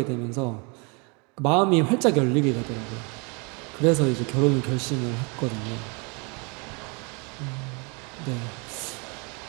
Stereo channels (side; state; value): left; quieter; 32.0 dB